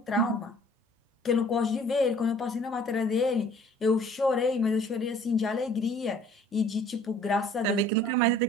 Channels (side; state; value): both; normal; correlation 0.54